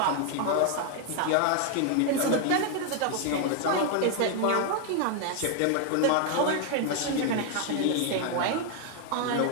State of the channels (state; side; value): different; both; correlation 0.00